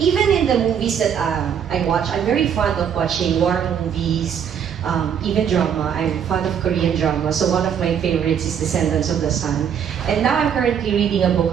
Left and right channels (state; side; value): quieter; left; 8.3 dB